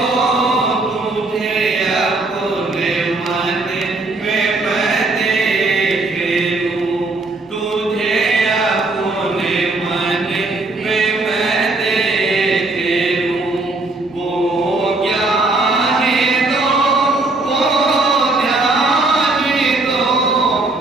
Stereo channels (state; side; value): quieter; left; 3.2 dB